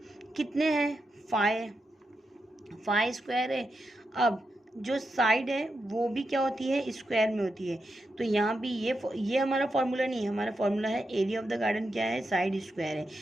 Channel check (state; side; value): normal; both; correlation 0.86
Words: कितने हैं, 5 स्क्वायर है। अब जो साइड है वो भी क्या होती है, स्क्वायर में होती है। तो यहाँ भी ये हमारा फॉर्मूला नहीं है, हमारा फॉर्मूला है एरिया ऑफ द गार्डन क्या है, साइड स्क्वायर है।